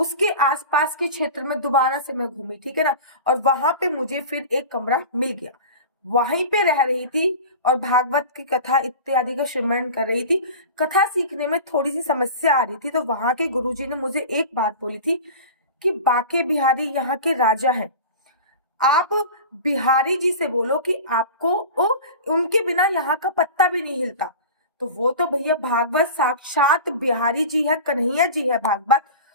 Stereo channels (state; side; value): inverted; both; correlation -0.34